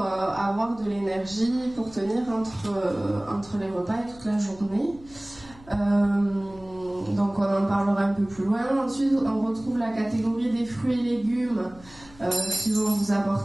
avoir de l'énergie, pour tenir entre les repas et toute la journée. Donc on en parlera un peu plus loin. Ensuite, on retrouve la catégorie des fruits et légumes qui vont vous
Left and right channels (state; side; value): noise; left; hum, 23 dB below the sound